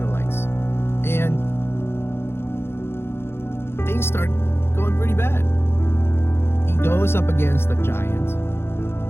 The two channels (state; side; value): late; right; 0.12 ms